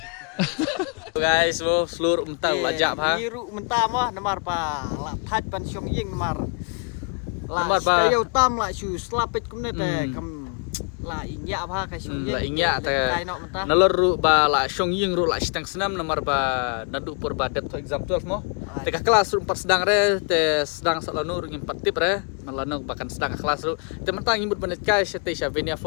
Guys, wo seluruh menta lajak ha. Biru menta mo namar pa. La thaj pan syong ying namar. La kayo tam la su slapit kumne te kam la inya apa kai syong ying. La inya te nalor ru ba la syong ying ru la stang senam namar ba nadu pur ba det exam 12 mo. Te ka kelas ru 4 sedang re te sedang salanu ru 4 tip re malano bahkan sedang kelas ru te mentang imut banet kai te sya Venia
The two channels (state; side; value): quieter; right; 35.3 dB